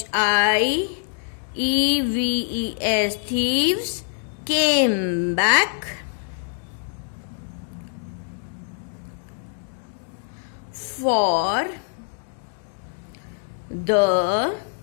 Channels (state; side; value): silent; right; digital silence